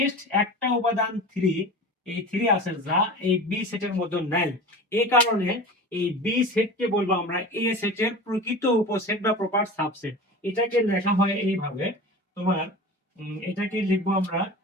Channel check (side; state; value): both; normal; correlation 0.33